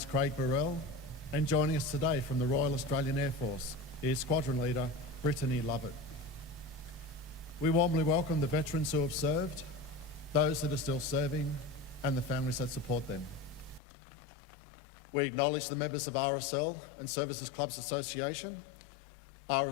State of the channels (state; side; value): drops out; right; at 13.8 s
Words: Craig Burrell, and joining us today from the Royal Australian Air Force is Squadron Leader Brittany Lovett. We warmly welcome the veterans who have served, those that are still serving, and the families that support them. We acknowledge the members of RSL and Services Clubs Association,